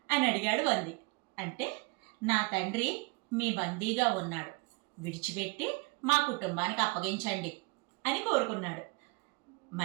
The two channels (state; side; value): quieter; left; 27.7 dB